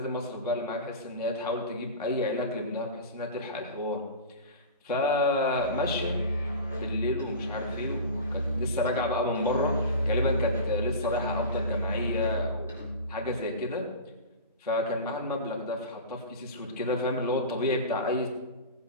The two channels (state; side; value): inverted; both; correlation -0.32